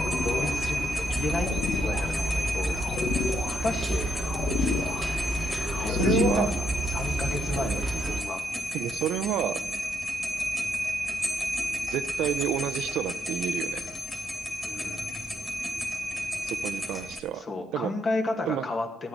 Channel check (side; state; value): both; normal; correlation 0.76